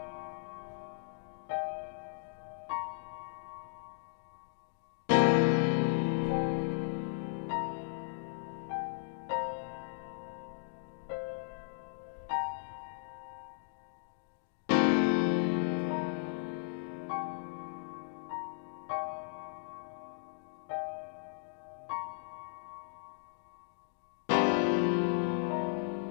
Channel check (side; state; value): right; silent; digital silence